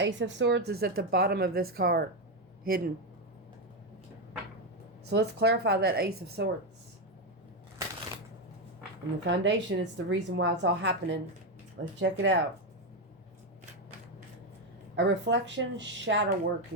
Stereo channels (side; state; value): both; normal; correlation 0.07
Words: of Swords is at the bottom of this card. Hidden. So let's clarify that Ace of Swords. And the foundation is the reason why it's all happening. Let's check it out. A reflection, shadow